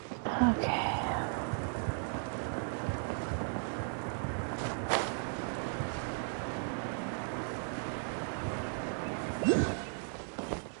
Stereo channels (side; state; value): left; silent; 54 dB below the other